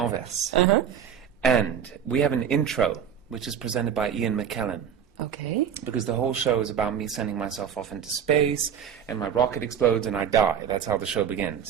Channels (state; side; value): quieter; left; 8.3 dB